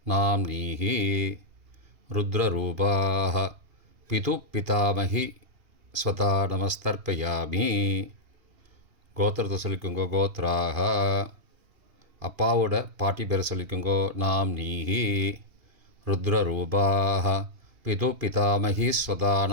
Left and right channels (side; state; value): left; late; 2.8 ms